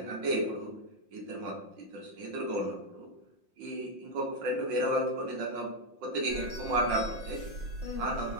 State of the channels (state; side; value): late; left; 5.7 ms